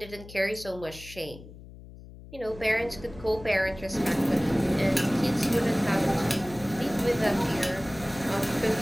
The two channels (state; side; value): noise; left; hum, 17 dB below the sound